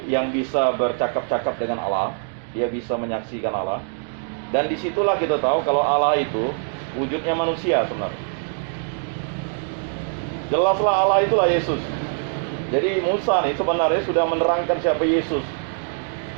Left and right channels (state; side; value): silent; left; 63 dB below the other